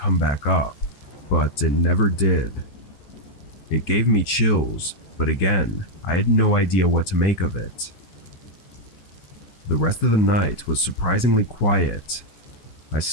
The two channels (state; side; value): late; right; 14 ms